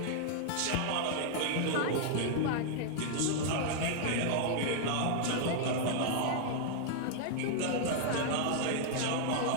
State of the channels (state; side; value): different; both; correlation -0.01